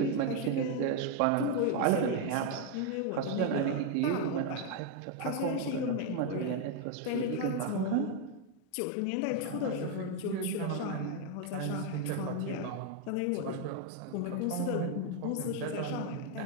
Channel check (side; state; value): both; different; correlation 0.01